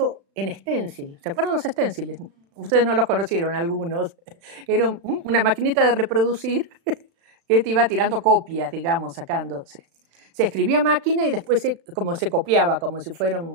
en stencil. ¿Se acuerdan los stenciles? Ustedes no los conocieron, algunos. Era una maquinita de reproducir que te iba tirando copias, digamos, sacándose. Se escribía a máquina y después se copiaba, como si fuera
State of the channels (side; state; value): left; late; 36 ms